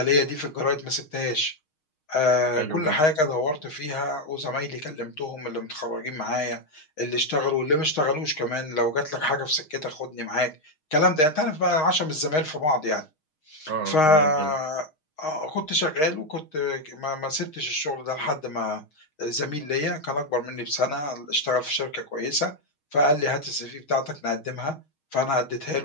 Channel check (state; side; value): late; right; 6.4 ms